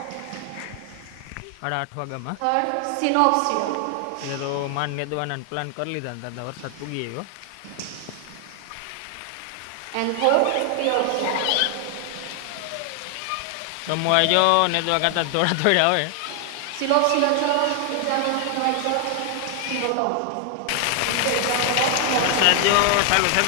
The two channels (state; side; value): different; both; correlation 0.00